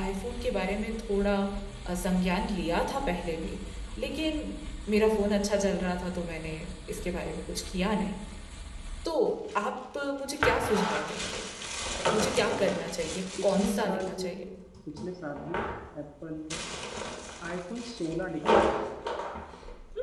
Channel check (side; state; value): both; identical; correlation 1.00